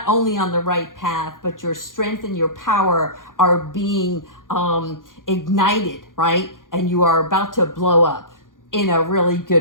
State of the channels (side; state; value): right; late; 0.90 ms